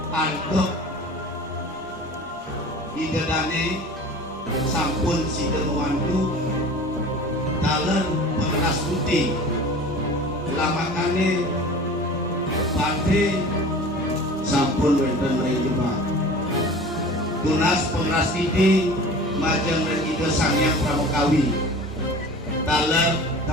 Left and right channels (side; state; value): both; normal; correlation 0.40